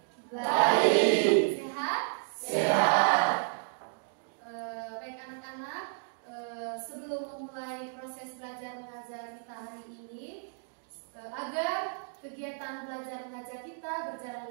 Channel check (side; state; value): left; silent; digital silence